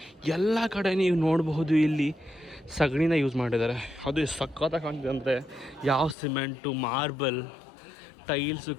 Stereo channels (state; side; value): drops out; right; at 6.2 s